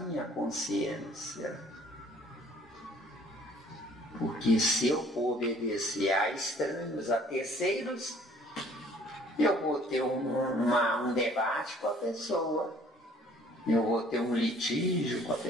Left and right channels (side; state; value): both; normal; correlation 0.56